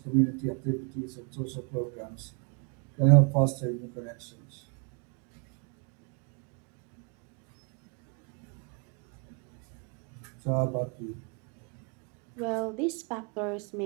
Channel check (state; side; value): quieter; left; 37.2 dB